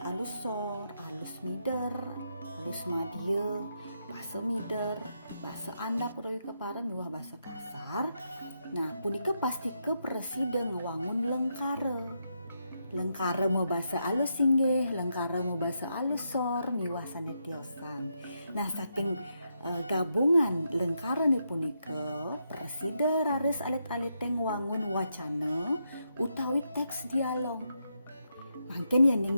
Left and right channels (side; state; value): both; inverted; correlation -0.82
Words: alus sor, alus mider, alus madya, bahasa mider, bahasa andap utawi kepare miwah bahasa kasar. Nah, punika pasti ke presida ngewangun lengkare. Lengkare mau bahasa alus singgih, lengkare mau bahasa alus sor, miwah sanetiosan. Nah, saking gabungan lengkare ni punika presida raris alit-alit ngewangun wacana utawi teks dialog. Mangken